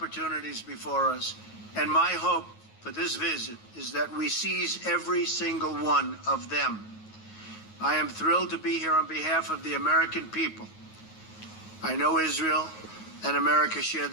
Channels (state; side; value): late; right; 9.4 ms